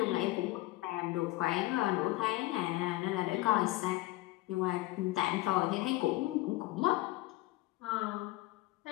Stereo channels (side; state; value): right; quieter; 18.7 dB